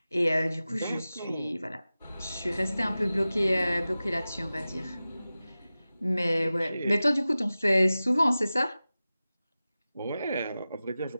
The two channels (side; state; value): both; inverted; correlation -0.96